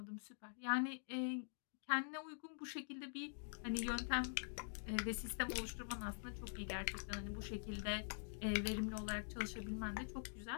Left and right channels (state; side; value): silent; right; digital silence